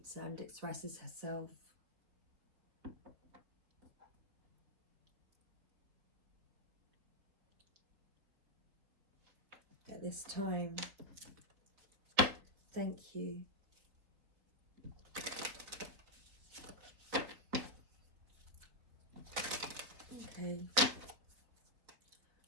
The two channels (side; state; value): left; late; 3.9 ms